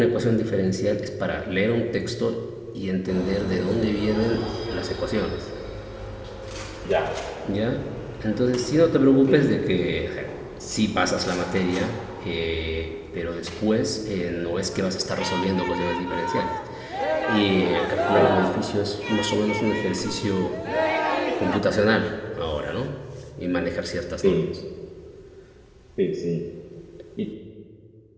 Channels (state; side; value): identical; both; correlation 1.00